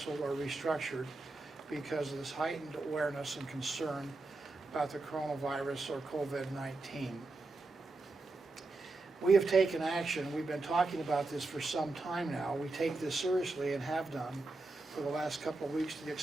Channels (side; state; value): left; quieter; 3.3 dB